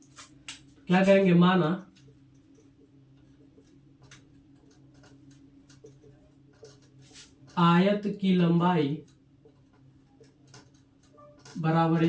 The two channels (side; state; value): both; identical; correlation 1.00